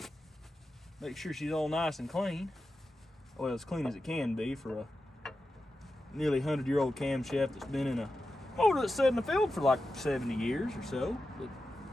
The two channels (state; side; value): normal; both; correlation 0.91